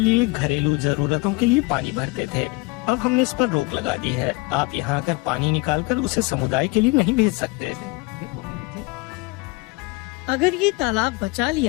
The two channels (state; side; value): quieter; right; 25.0 dB